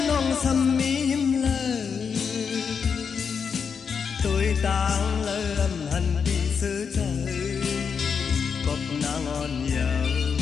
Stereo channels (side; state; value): right; quieter; 6.3 dB